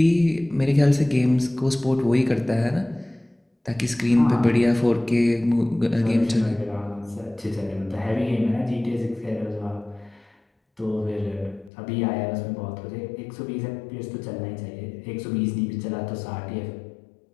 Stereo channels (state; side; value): drops out; right; at 11.7 s